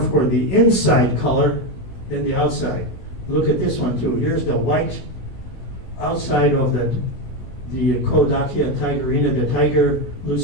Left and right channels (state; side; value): late; right; 16 ms